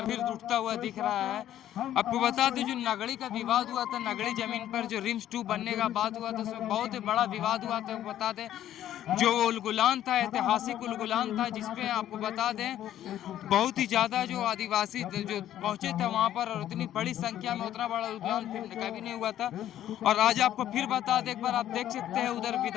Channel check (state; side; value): quieter; right; 11.9 dB